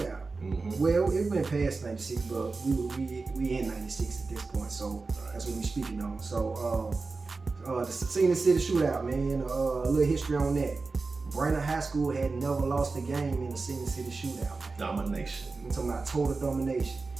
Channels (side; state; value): left; quieter; 4.0 dB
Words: Well, it went past '96, but we in '96 at this point, so that's what we speaking on. So the Scenic City Shootout, man, a little history on that. Brainerd High School had never lost a game in the Scenic City Shootout, man. Domination. I'm talking about total domination.